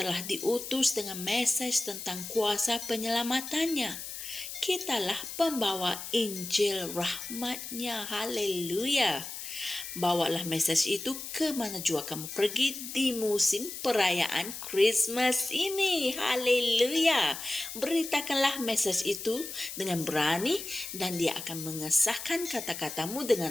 diutus dengan mesej tentang kuasa penyelamatannya. Kitalah pembawa Injil rahmatnya. Haleluya! Bawalah mesej itu ke mana jua kamu pergi di musim perayaan Christmas ini. Haleluya! Beritakanlah mesej itu dengan berani, dan Dia akan mengesahkan kata-katamu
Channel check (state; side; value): noise; left; hiss, 9 dB below the sound